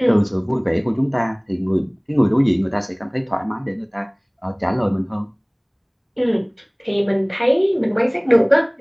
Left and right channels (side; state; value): both; identical; correlation 1.00